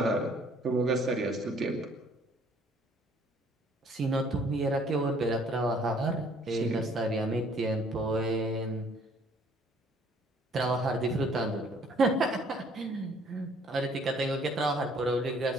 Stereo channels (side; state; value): both; normal; correlation 0.60